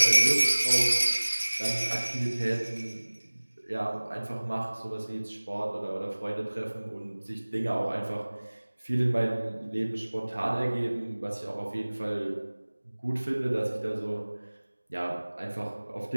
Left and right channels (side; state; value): both; inverted; correlation -1.00